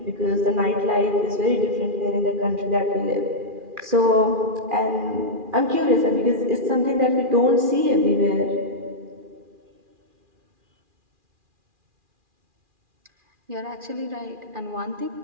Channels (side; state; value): left; late; 2.4 ms